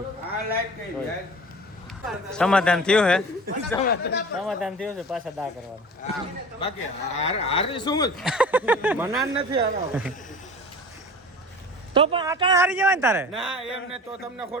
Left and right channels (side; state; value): both; normal; correlation 0.38